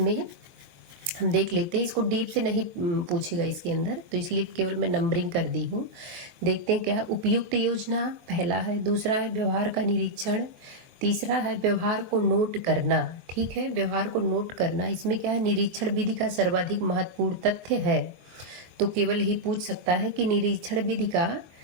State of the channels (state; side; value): late; left; 23 ms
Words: हम देख लेते हैं, इसको डीप से नहीं पूछेगा इसके अंदर, तो इसलिए केवल मैं नंबरिंग कर दी हूँ। देखते हैं क्या। उपयुक्त योजना पहला है, दूसरा है व्यवहार का निरीक्षण, तीसरा है व्यवहार को नोट करना। ठीक है, व्यवहार को नोट करना, इसमें क्या है? निरीक्षण विधि का सर्वाधिक महत्वपूर्ण तथ्य है, तो केवल ही पूछ सकता है कि निरीक्षण विधि का